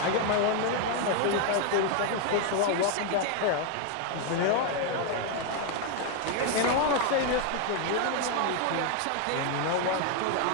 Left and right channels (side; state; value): both; different; correlation 0.01